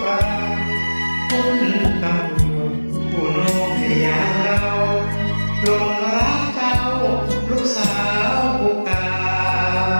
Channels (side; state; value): both; inverted; correlation -1.00